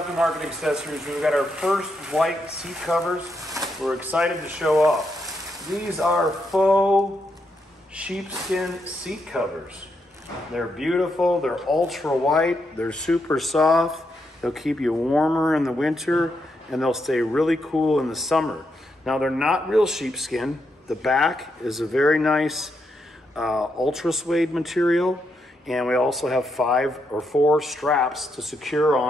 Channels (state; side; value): normal; both; correlation 0.81